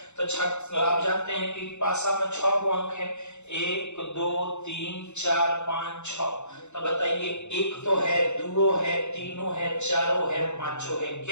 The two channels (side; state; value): right; late; 0.83 ms